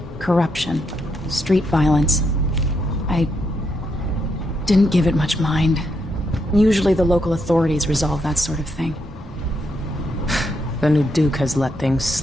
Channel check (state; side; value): normal; both; correlation 0.79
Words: corruption, street violence. I didn't give it much mind. Usually the local authorities resolve that sort of thing. The new Duke has let things